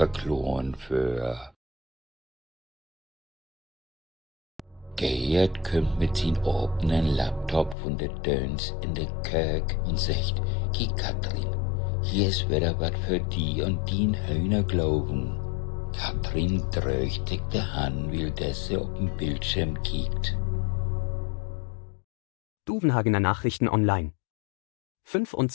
für. Gerd kommt mit sin offenen Laptop von der Döns in der Kirk und sagt, Ki Katrin, hier ist wieder wat für die und din Hühner glauben. Katrin drückt sich die Hand, weil sie auf den Bildschirm kickt. Duvenhagener Nachrichten online.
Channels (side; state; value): right; drops out; at 7.8 s